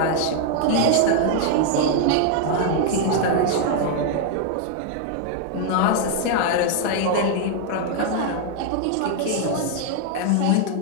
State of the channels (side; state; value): both; different; correlation 0.00